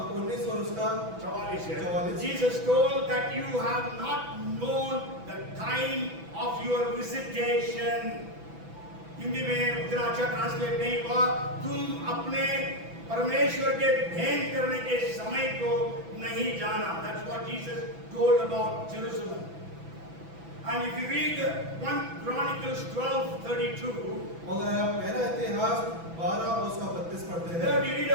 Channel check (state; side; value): late; left; 6.0 ms